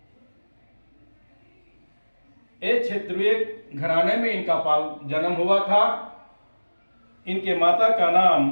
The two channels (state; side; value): inverted; both; correlation -1.00